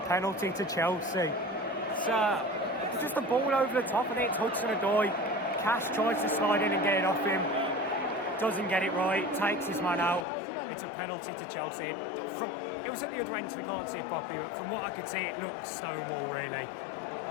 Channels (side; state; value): right; drops out; at 10.2 s